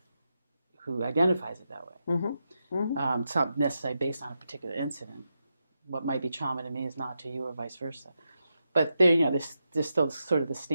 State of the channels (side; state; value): both; inverted; correlation -0.86